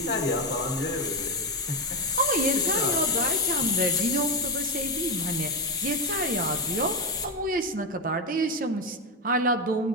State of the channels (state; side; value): normal; both; correlation 0.11